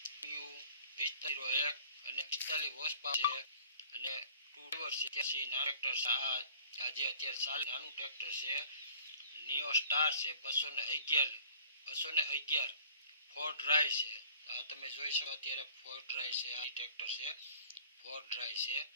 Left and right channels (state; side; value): inverted; both; correlation -0.51